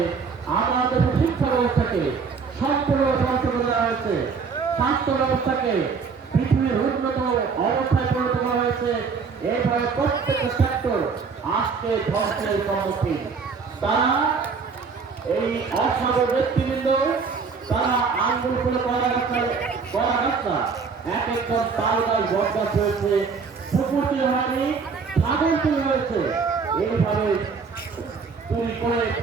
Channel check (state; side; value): quieter; left; 5.3 dB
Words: আমাদের শিক্ষা ব্যবস্থাকে সম্পূর্ণভাবে ধ্বংস করে দেওয়া হয়েছে। স্বাস্থ্য ব্যবস্থাকে পৃথিবীর উন্নত অবস্থায় পরিণত করা হয়েছে। এইভাবে প্রত্যেকটা সেক্টর আজকে ধ্বংসের সম্মুখীন। তারা এই অসাধু ব্যক্তিবৃন্দ, তারা আঙ্গুল করে করা রাস্তা এক একজন তাল গাছ বরদাস হয়েছে, পুকুর তৈরি হয়নি, ছাগল তৈরি হয়েছে। এইভাবে চুরি করে